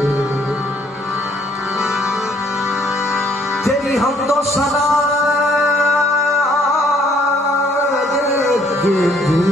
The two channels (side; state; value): both; normal; correlation 0.64